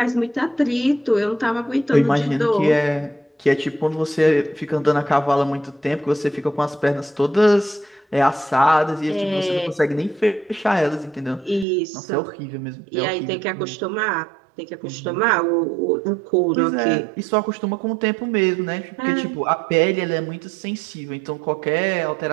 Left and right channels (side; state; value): left; drops out; at 11.7 s